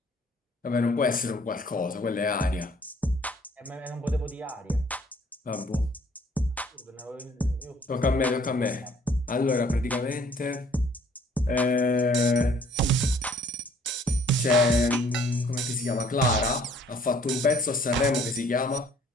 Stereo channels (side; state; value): both; normal; correlation 0.59